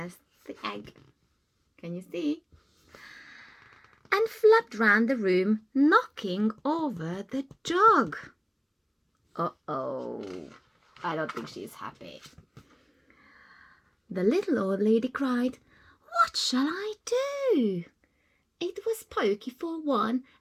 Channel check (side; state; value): both; identical; correlation 1.00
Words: the egg. Can you see? And flapped round the room, knocking over the jug. Uh-oh, I don't think she's happy. The little old lady cried, "What shall I do? It was pokey for one,